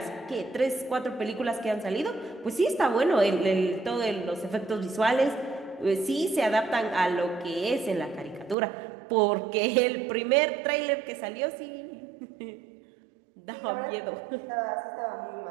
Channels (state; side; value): drops out; left; at 8.6 s